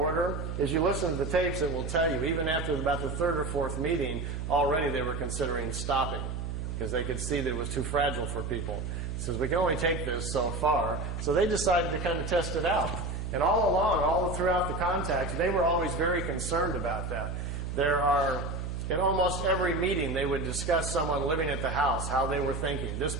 As you listen to the tapes, it will tell you, even after about the third or fourth meeting, already they were considering stopping. because they could see that it was too fragile for people. He says, we can only take this so far. So they decided to kind of test it out. And all along, all throughout the contact, they were always very concerned about that. In almost every meeting, they would discuss someone living at the house, how they were thinking. This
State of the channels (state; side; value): noise; right; hum, 5 dB below the sound